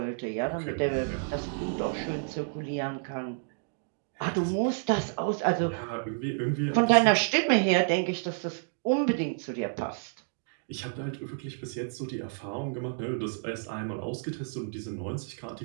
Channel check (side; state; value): left; silent; digital silence